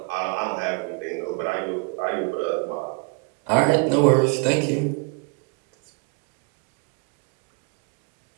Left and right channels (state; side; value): quieter; left; 33.2 dB